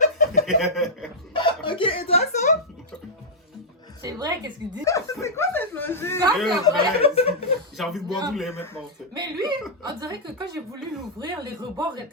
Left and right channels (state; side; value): normal; both; correlation -0.08